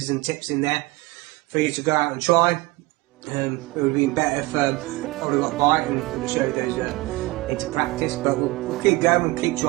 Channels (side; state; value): left; quieter; 21.6 dB